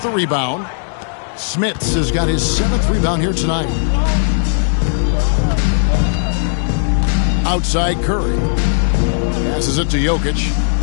the rebound. Smits has got his 7th rebound here tonight. Outside Curry. Passes it to Jokic.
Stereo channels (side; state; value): right; silent; digital silence